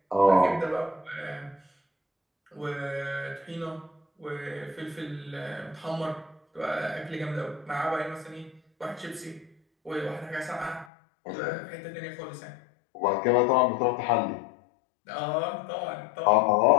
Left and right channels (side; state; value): right; drops out; at 10.9 s